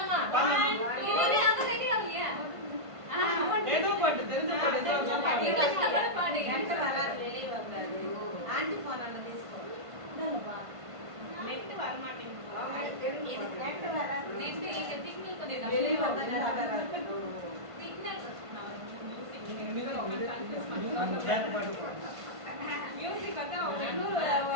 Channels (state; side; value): late; left; 1.5 ms